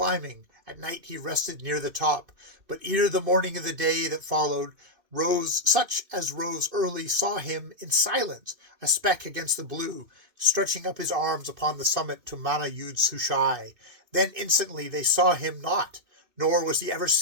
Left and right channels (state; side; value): late; left; 2.6 ms